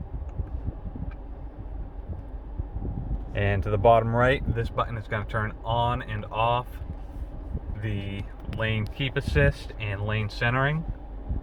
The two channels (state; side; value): identical; both; correlation 1.00